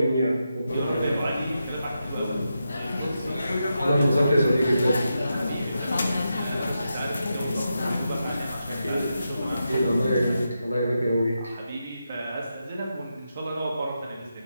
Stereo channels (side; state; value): both; inverted; correlation -0.87